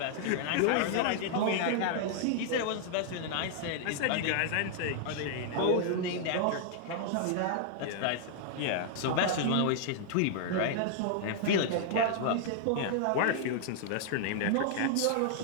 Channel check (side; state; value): both; different; correlation 0.00